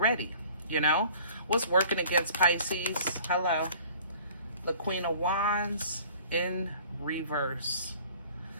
What's working against Pisces? Hello. The Queen of Wands in reverse.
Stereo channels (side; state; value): both; inverted; correlation -0.50